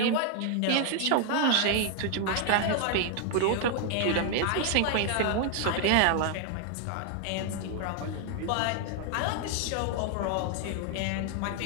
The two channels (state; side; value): different; both; correlation 0.00